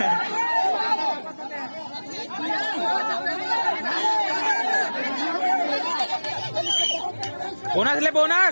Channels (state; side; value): inverted; both; correlation -1.00